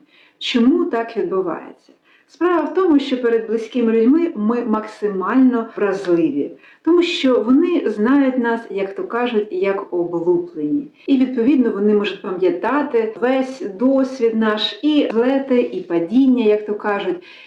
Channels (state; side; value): identical; both; correlation 1.00